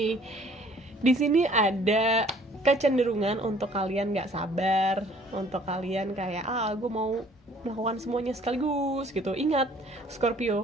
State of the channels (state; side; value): normal; both; correlation 0.56